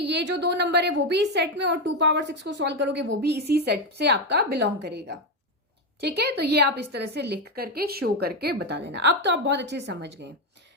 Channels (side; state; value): both; normal; correlation 0.08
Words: जो दो नंबर है वो भी इस सेट में, और 2 पावर 6 को सॉल्व करोगे वो भी इसी सेट से आपका बिलोंग करेगा। ठीक है, तो ये आप इस तरह से लिख करके शो करके बता देना। अब तो आप बहुत अच्छे से समझ गए।